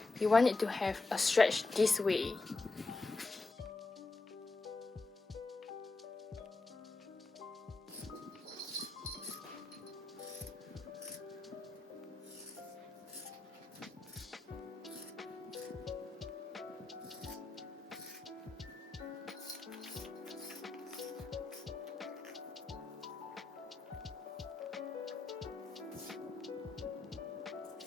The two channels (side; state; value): right; quieter; 3.6 dB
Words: you want it to have a stretch this way.